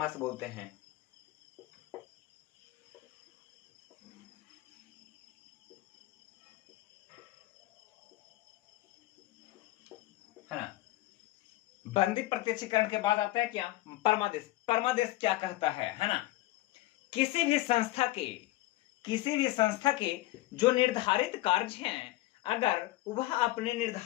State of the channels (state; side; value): quieter; right; 17.5 dB